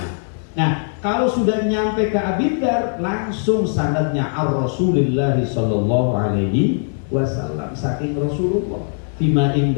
Nah, kalau sudah nyampe ke Abi Dzar langsung sanadnya ar-Rasulillah sallallahu alaihi wasallam saking Rasulullah fima ing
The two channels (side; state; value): right; silent; digital silence